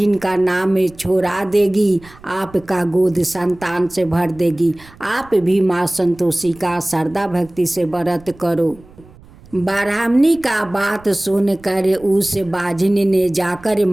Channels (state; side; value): noise; right; rumble, 23 dB below the sound